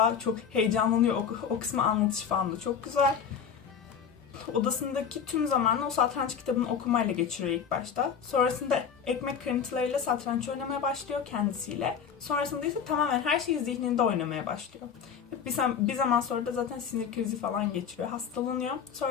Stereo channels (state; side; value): quieter; right; 7.3 dB